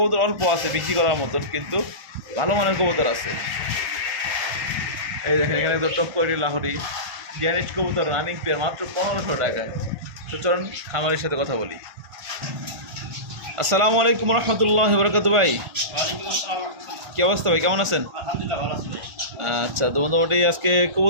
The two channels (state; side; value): late; left; 1.5 ms